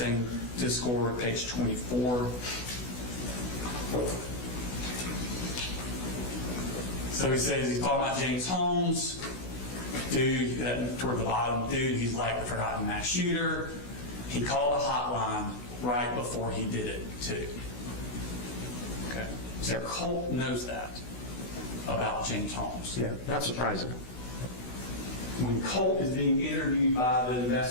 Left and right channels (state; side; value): late; right; 16 ms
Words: Discord, page 24. So he says he's talking about James Holmes. Dude, toward the bottom, dude, he's like the forgotten mass shooter. He called a hotline right before he did it, too. Okay. So Colt knows that about James Holmes. Yeah, not surprising. when Colt is being interviewed by the